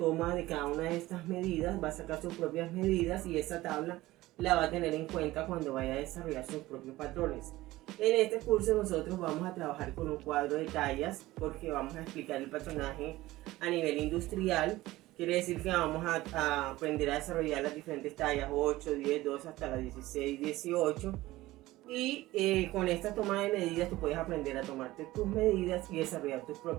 de cada una de estas medidas, va a sacar sus propias medidas, y esa tabla la va a tener en cuenta cuando vaya a desarrollar sus propios patrones. En este curso nosotros vamos a trabajar con un cuadro de tallas, porque vamos a explicar el patronaje a nivel industrial. Quiere decir que vamos a aprender a desarrollar las diferentes tallas 8, 10, 12 hasta las 16, 18. Y con esta toma de medidas tú puedes aprender a tomarte tus medidas y desarrollar tus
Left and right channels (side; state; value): left; quieter; 17.6 dB